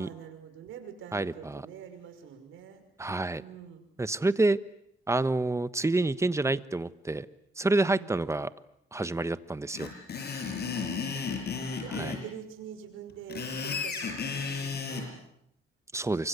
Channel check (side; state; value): both; normal; correlation 0.72